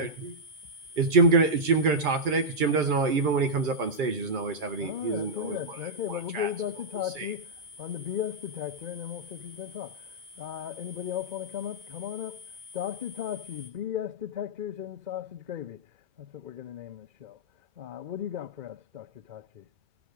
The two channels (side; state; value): left; late; 2.3 ms